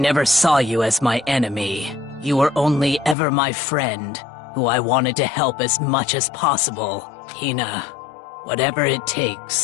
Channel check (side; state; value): right; drops out; at 3.2 s